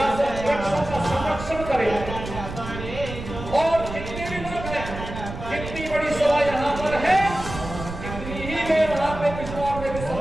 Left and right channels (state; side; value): noise; right; rumble, 9 dB below the sound